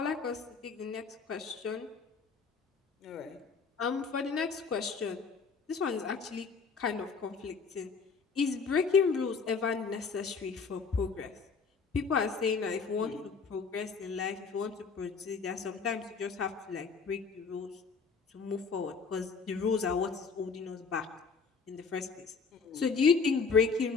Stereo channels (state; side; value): quieter; right; 5.1 dB